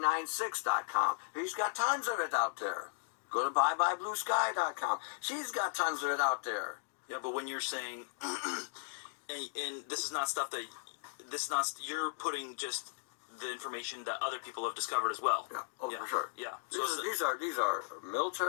He's got tons of it out there. Go to byebyebluesky.com. She's got tons of it out there. Yeah, but when you're saying, and this is not stuff that, you're putting just the information that other people have discovered as well. Yeah, for sure. Yeah. These are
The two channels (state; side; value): silent; right; digital silence